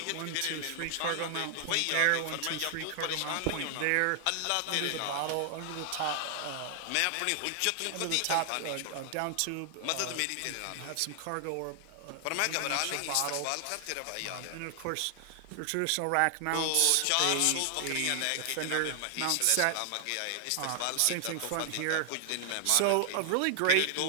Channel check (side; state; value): both; different; correlation 0.00